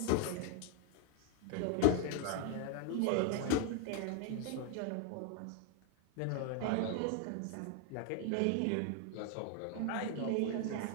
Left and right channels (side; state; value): both; different; correlation 0.00